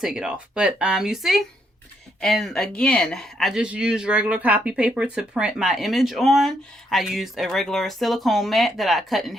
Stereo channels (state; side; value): normal; both; correlation 0.75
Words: it off. But you see? And again, I just used regular copy paper to print my image on. I used a regular silicone mat that I cut in